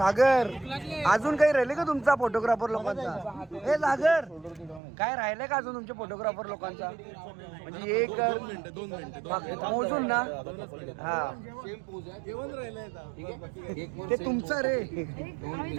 अजून काही राहिले का तुमचा फोटोग्राफर लोकांचा? हे सागर काय राहिलंय का अजून तुमच्या फोटोग्राफर लोकांचा? म्हणजे एक 2 मिनिटं मोजून ना. हा ते तुमचं रे. आम्ही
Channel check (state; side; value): drops out; left; at 4.8 s